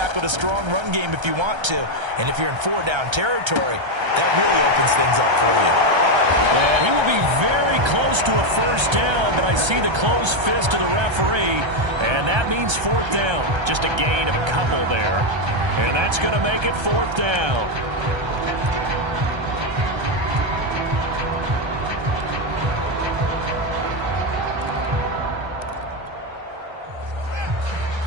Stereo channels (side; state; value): left; late; 1.3 ms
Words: with a strong run game if you want to. And if you're in 4-down territory, that really opens things up for you. And he will be very close to a 1st down, but I see the closed fist of the referee, and that means 4th down. Just a gain of a couple there, and that's going to make it 4th down.